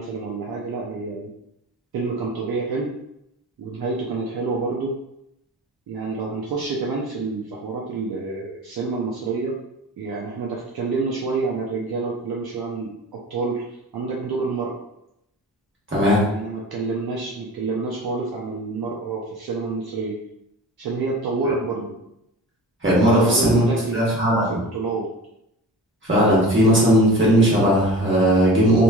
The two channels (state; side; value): normal; both; correlation 0.37